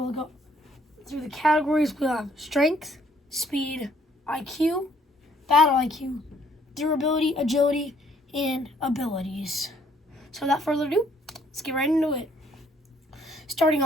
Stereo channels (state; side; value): normal; both; correlation 0.65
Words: go through the categories. We'll have strength, speed, IQ, battle IQ, durability, agility, and abilities. So without further ado, let's get right into it. Starting